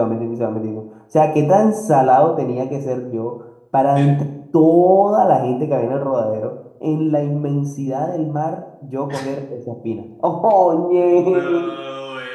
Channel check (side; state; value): both; identical; correlation 1.00